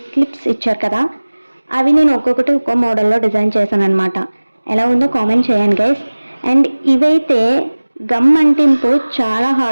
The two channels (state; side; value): inverted; both; correlation -1.00